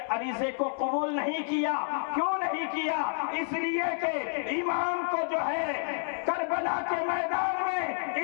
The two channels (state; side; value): silent; right; digital silence